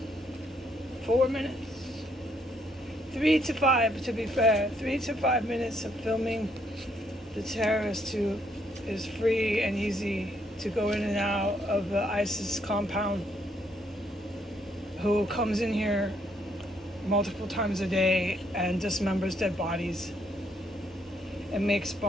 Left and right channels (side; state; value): both; normal; correlation 0.71